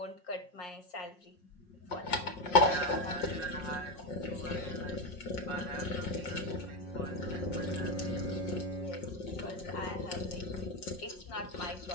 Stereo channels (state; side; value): late; right; 5.6 ms